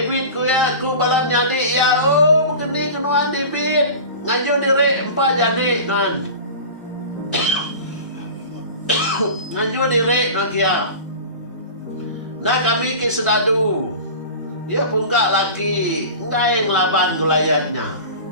ku ya ku balam nyadi ya, begini kenuan David ngaju diri 4 jani nan. Ngaju diri nak ya. Nah kami ke sedadu. Ya pungkak lagi, enggak yang laban gulayatnya.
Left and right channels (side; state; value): both; inverted; correlation -0.35